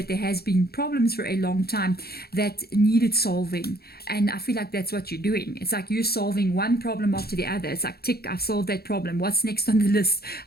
there has been problems for a long time that needed solving. And I feel like that's what you're doing. It's like you're solving one problem after the other. It's like, tick, I've solved that problem. What's next on the list?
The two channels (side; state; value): right; late; 0.46 ms